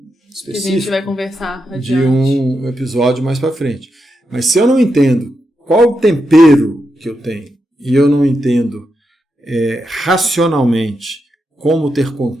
específico que a gente vai conversar adiante. De um episódio mais para frente. Mas se eu não entendo qual o tempero que eu tenho e eu não entendo racionalmente como ter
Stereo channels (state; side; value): normal; both; correlation 0.85